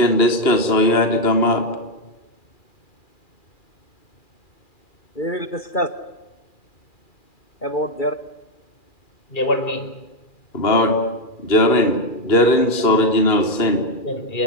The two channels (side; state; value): right; late; 2.4 ms